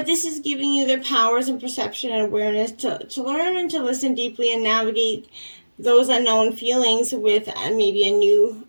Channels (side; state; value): both; inverted; correlation -1.00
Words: this is giving you the powers and perception and awareness to learn and to listen deeply and navigate those unknown feelings with maybe a new